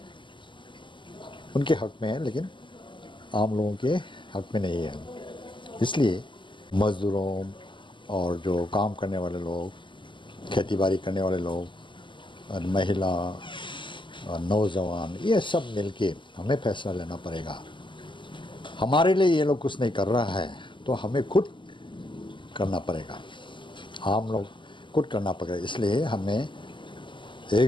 उनके हक में है, लेकिन आम लोगों के हक में नहीं है। इसलिए मज़दूरों और जो काम करने वाले लोग, खेती बाड़ी करने वाले लोग, और महिला और नौजवान, ये सब मिलके हमें फैसला लेना पड़ेगा। हमारे लिए ये लोग कुछ नहीं कर रहा है तो हमें खुद करना पड़ेगा, आम लोग खुद करना पड़ेगा। इसलिए हमें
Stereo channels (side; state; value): right; late; 0.24 ms